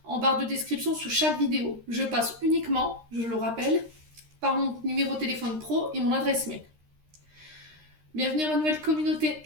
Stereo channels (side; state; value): left; late; 13 ms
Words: en barre de description sous chaque vidéo. Je passe uniquement, je le rappelle, par mon numéro de téléphone pro et mon adresse mail. Bienvenue à ma nouvelle communauté